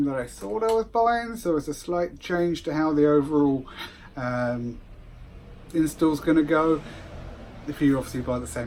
that I thought I was buying, so it's a slight change to how the overall install's going to go. If you obviously buy the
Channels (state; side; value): identical; both; correlation 1.00